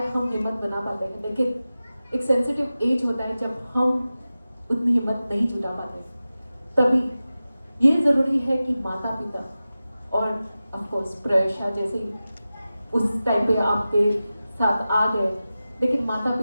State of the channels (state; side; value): inverted; both; correlation -0.95